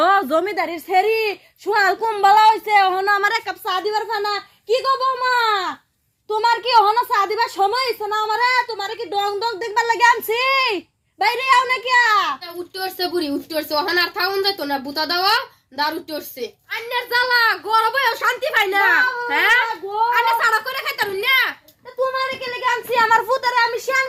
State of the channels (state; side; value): identical; both; correlation 1.00